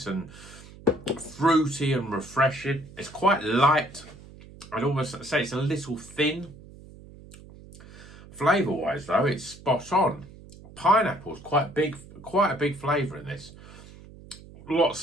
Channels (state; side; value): noise; right; hum, 19 dB below the sound